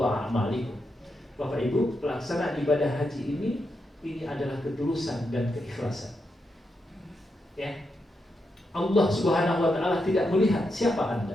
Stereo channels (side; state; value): both; normal; correlation 0.84